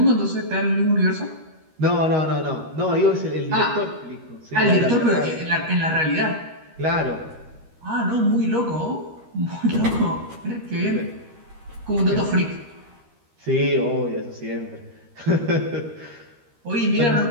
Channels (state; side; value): late; left; 13 ms